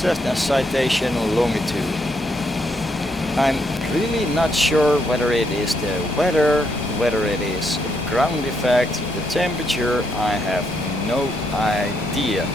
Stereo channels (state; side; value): normal; both; correlation 0.76